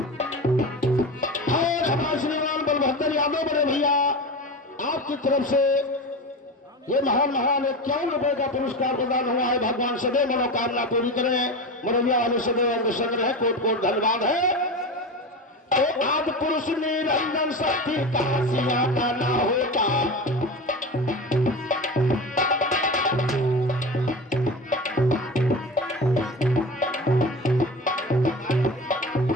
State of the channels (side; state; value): both; normal; correlation 0.27